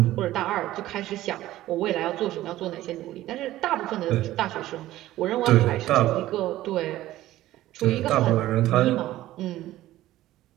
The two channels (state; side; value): quieter; left; 15.1 dB